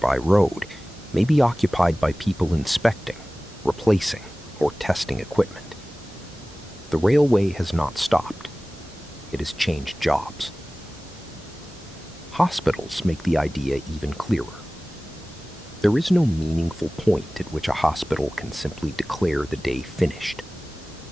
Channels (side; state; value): both; normal; correlation 0.98